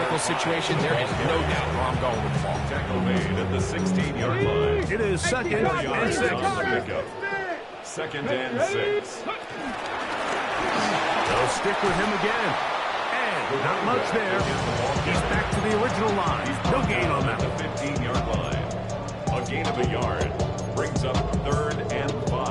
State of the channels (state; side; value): identical; both; correlation 1.00